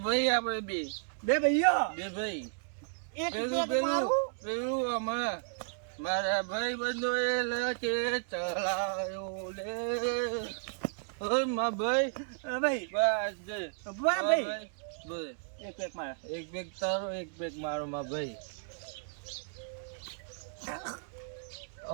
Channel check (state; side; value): silent; left; digital silence